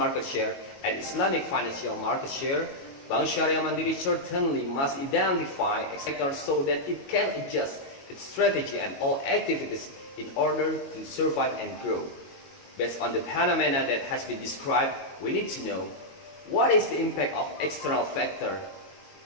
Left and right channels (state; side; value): late; right; 22 ms